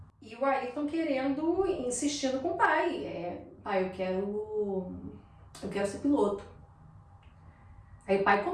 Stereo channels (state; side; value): identical; both; correlation 1.00